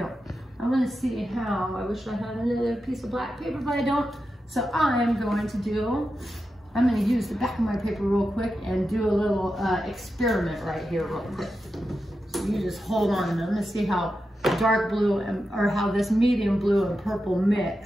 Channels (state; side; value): normal; both; correlation 0.90